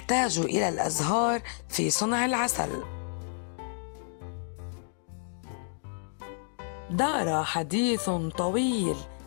إلى الأزهار في صنع العسل. دار حديث طويل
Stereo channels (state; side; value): silent; right; digital silence